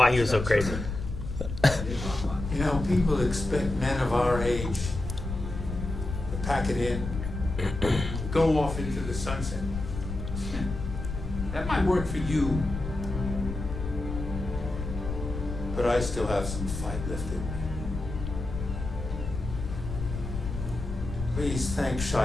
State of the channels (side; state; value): left; noise; rumble, 6 dB below the sound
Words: he was so crazy. You know, people expect men of our age to pack it in, go off into the sunset. That might work for you, but I still have some fight left in me. Please thank